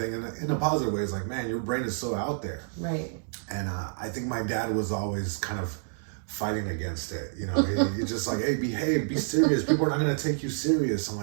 And in a positive way, it's like, man, your brain is so out there. Right. And I think my dad was always kind of fighting against it. He's just like, hey, behave, be serious. People are not going to take you serious. I'm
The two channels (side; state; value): left; silent; digital silence